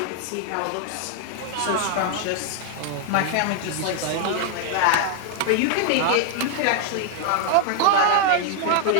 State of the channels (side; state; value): both; different; correlation 0.00